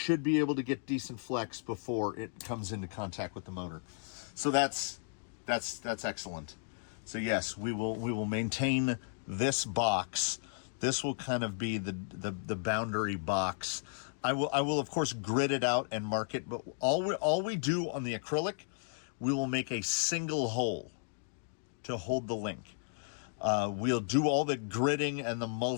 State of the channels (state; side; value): silent; right; digital silence